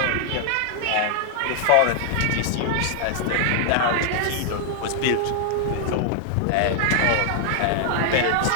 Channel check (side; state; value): both; different; correlation 0.00